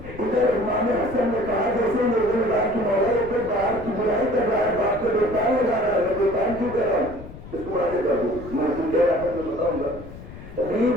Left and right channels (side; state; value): left; noise; rumble, 14 dB below the sound